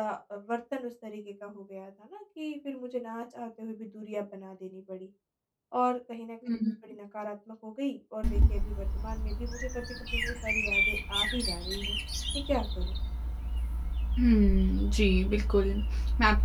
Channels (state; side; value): identical; both; correlation 1.00